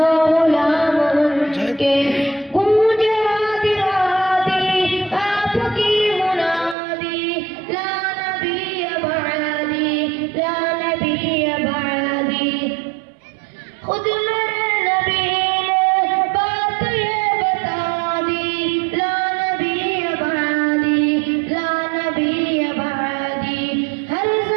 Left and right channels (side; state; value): left; drops out; at 6.8 s